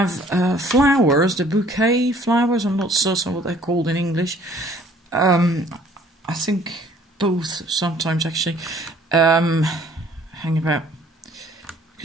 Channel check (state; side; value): normal; both; correlation 0.57